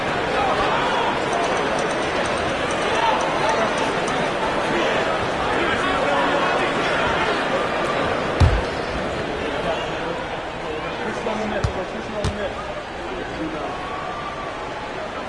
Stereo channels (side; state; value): both; identical; correlation 1.00